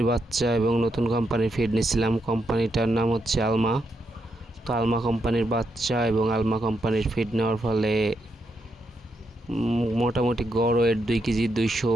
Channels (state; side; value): normal; both; correlation 0.81